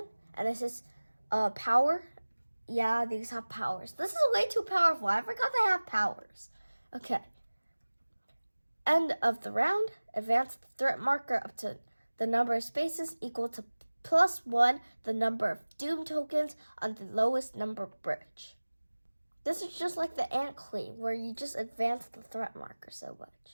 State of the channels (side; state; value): both; inverted; correlation -1.00